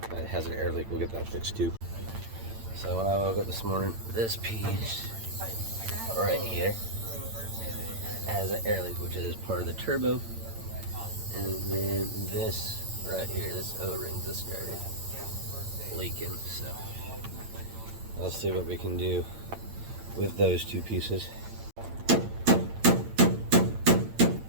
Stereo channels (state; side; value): late; left; 8.9 ms